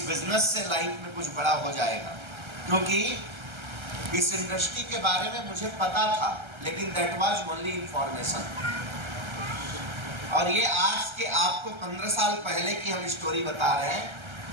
बिजनेस से लाइफ में कुछ बड़ा हो जाएगा, क्योंकि इस इंडस्ट्री के बारे में मुझे पता था, लेकिन दैट वाज ओनली इंफॉर्मेशन। और ये आज के आपको 15 साल पहले की हम स्टोरी बता रहे हैं,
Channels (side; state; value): left; late; 1.3 ms